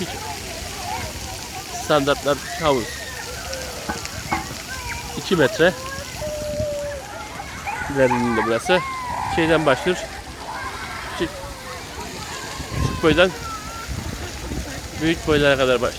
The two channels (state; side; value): identical; both; correlation 1.00